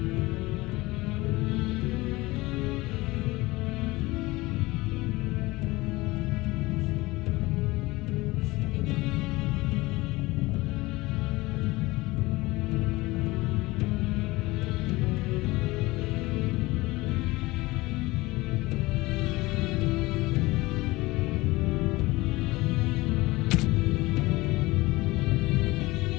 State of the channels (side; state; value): right; quieter; 20.9 dB